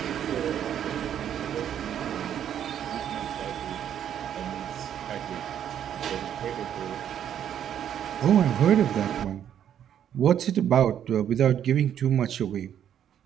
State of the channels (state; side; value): quieter; left; 9.7 dB